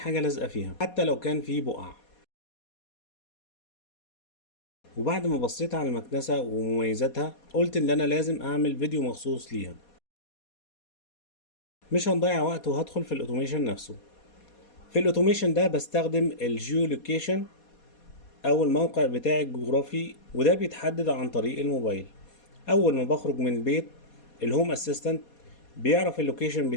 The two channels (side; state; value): right; late; 4.2 ms